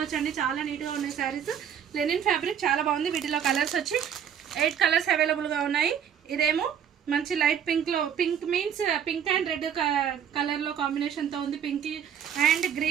అండి. చాలా నీట్ గా ఉన్నాయి శారీస్. లెనిన్ ఫ్యాబ్రిక్ చాలా బాగుంది. వీటిలో కలర్స్ వచ్చి 8 కలర్స్ అవైలబుల్ గా ఉన్నాయి. ఇదేమో మంచి లైట్ పింక్ లో, pink means pink and red colour లో కాంబినేషన్ తో ఉంది. Pink and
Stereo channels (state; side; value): quieter; left; 8.6 dB